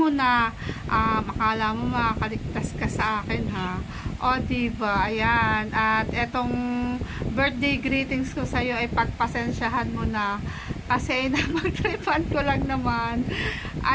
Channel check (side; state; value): both; identical; correlation 1.00